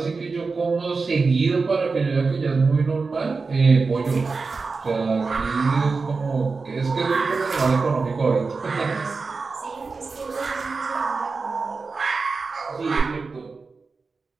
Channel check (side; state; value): left; quieter; 4.3 dB